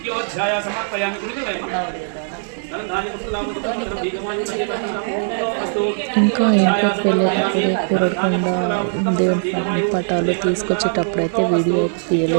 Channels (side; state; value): left; silent; digital silence